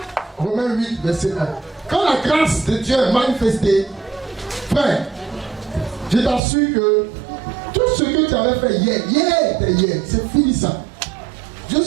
Romains 8, verset 1. Quand la grâce de Dieu est manifestée, frère, je t'assure que tout ce que tu avais fait hier, c'est fini ça. Dieu ne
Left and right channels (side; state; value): left; drops out; at 6.4 s